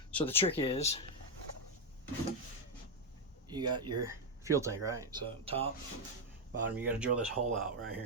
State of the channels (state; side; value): normal; both; correlation 0.02